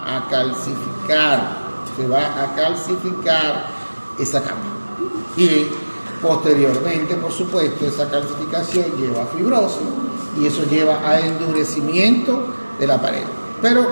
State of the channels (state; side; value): inverted; both; correlation -1.00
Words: a calcificar esa capa. Y posteriormente, por supuesto, esa calcificación lleva a fibrosis y eso lleva a endurecimiento de la pared. Pero,